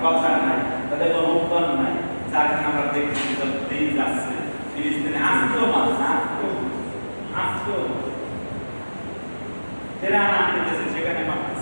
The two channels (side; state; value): both; inverted; correlation -1.00